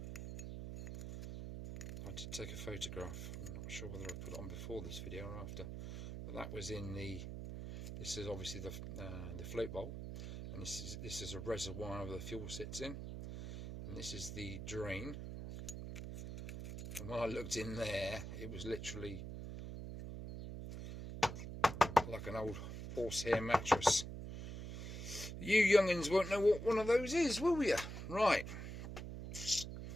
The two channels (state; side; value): noise; right; hum, 7 dB below the sound